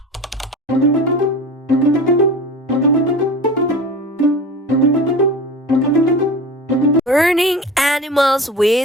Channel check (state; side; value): normal; both; correlation 0.33